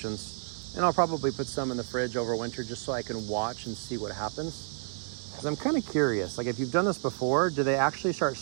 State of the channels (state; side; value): silent; left; digital silence